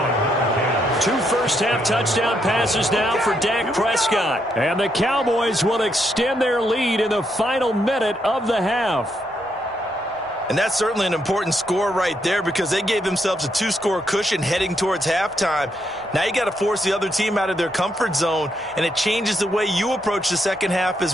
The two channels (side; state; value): both; normal; correlation 0.77